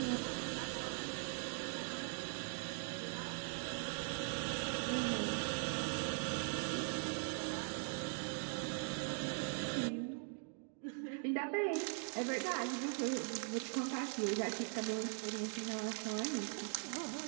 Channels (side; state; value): left; silent; 50 dB below the other